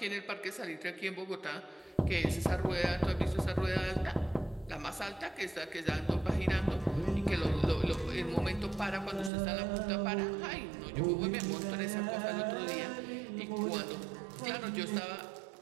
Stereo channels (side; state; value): left; drops out; at 9.3 s